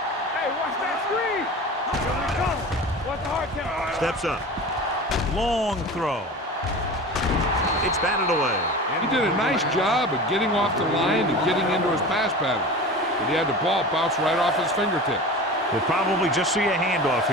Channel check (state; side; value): normal; both; correlation 0.34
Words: Hey, watch that screen. Here we go. Watch the hard count. Steps up. Long throw. It's batted away. He did a nice job of getting off the line and getting into his pass pattern, but he had the ball bounce right off his fingertips. We'll probably just see a handoff